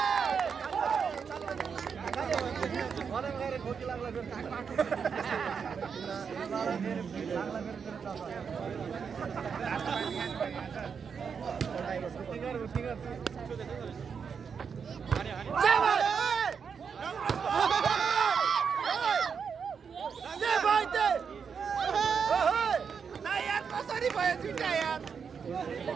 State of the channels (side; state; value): left; quieter; 6.4 dB